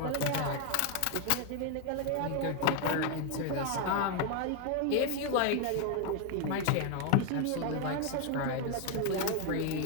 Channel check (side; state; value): both; different; correlation 0.01